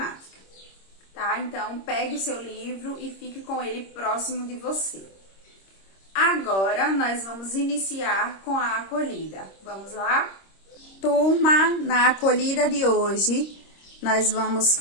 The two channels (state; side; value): late; right; 26 ms